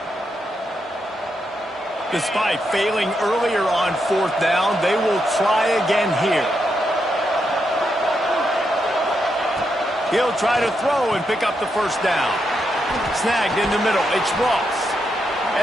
Despite failing earlier on fourth down, they will try again here. He'll try to throw and pick up the first down. Snagged in the middle. It's Ross.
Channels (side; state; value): both; normal; correlation 0.82